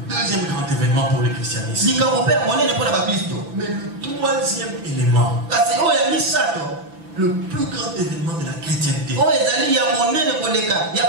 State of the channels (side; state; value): left; late; 5.9 ms